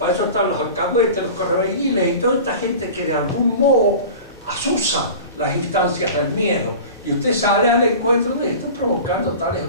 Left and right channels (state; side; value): inverted; both; correlation -0.37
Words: eso están los alcahuetes, los correveidilles y toda esta gente que de algún modo asusa las instancias del miedo. Y usted sale al encuentro de esto provocando tales o